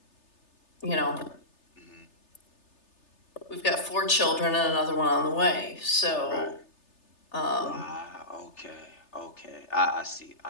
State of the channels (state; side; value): late; right; 3.3 ms